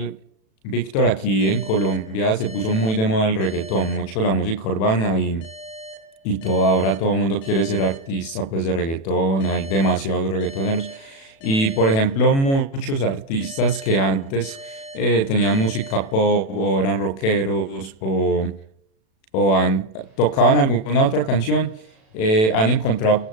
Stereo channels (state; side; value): late; right; 36 ms